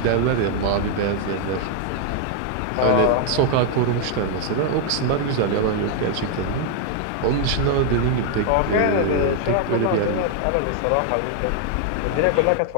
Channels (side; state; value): both; different; correlation 0.00